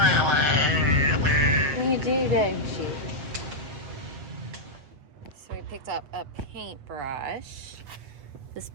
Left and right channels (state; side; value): late; left; 7.5 ms